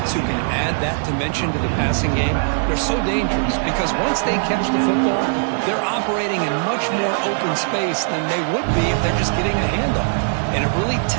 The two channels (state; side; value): silent; left; digital silence